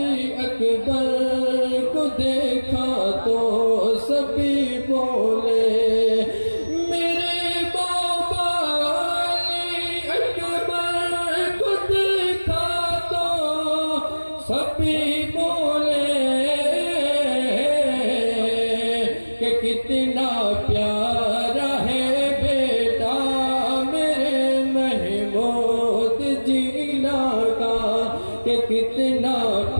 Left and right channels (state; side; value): inverted; both; correlation -1.00